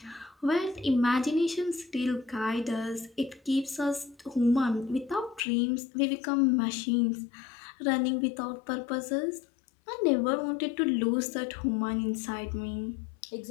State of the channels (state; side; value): drops out; right; at 5.4 s